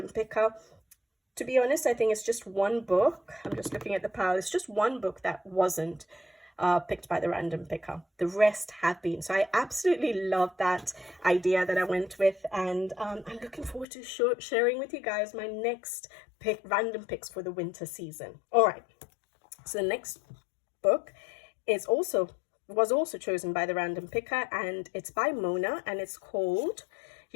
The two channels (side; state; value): right; drops out; at 13.9 s